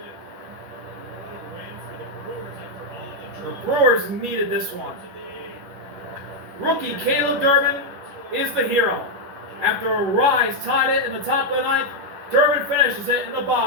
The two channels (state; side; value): late; left; 10 ms